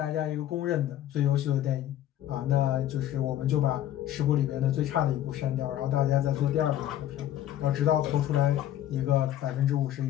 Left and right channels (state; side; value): quieter; right; 12.0 dB